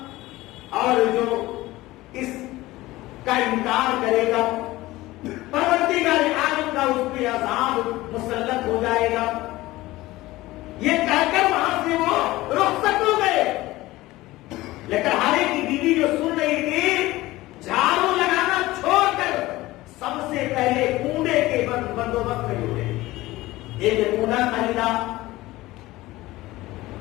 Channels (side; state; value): right; quieter; 18.2 dB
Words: اور جو اس کا انکار کرے گا پروردگار عالم کا اس پہ عذاب مسلط ہو جائے گا۔ یہ کہہ کر وہاں سے وہ رخصت ہو گئے۔ لکڑہارے کی بیوی جو سن رہی تھی جھاڑو لگانا چھوڑ کر سب سے پہلے کوڑے کے بندوبست میں جڑے، ایک کوڑا خریدا